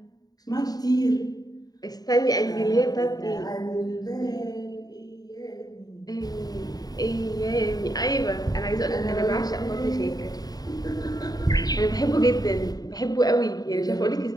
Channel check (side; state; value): right; late; 0.18 ms